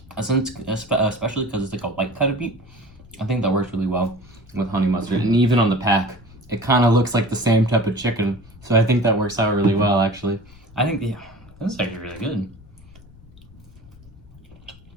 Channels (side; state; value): left; noise; rumble, 23 dB below the sound